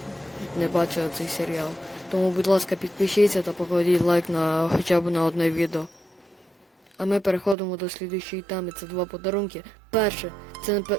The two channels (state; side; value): drops out; left; at 7.6 s